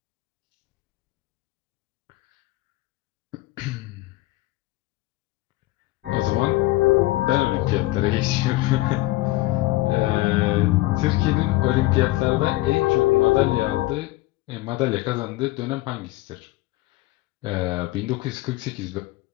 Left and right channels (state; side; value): quieter; right; 18.8 dB